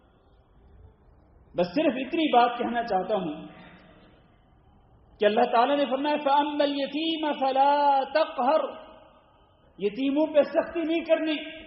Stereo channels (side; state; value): both; identical; correlation 1.00